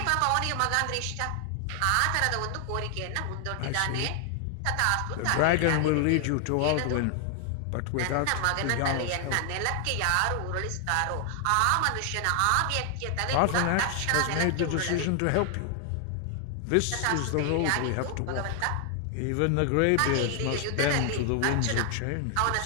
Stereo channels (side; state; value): both; different; correlation 0.00